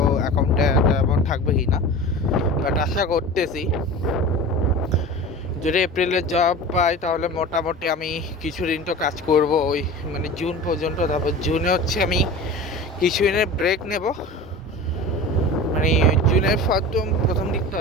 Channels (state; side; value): normal; both; correlation 0.34